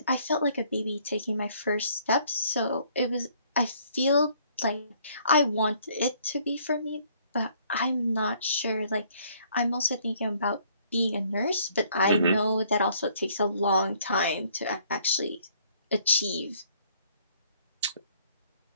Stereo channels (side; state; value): both; inverted; correlation -0.62